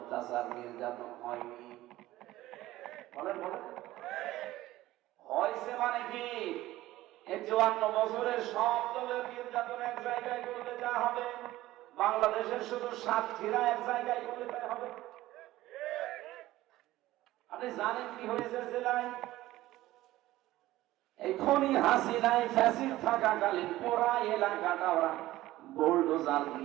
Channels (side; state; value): left; quieter; 16.2 dB